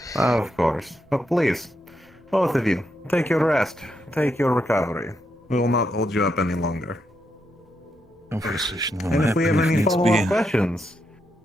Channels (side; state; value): both; normal; correlation 0.81